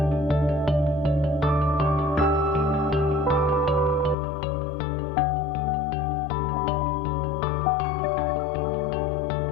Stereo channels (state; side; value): drops out; right; at 4.2 s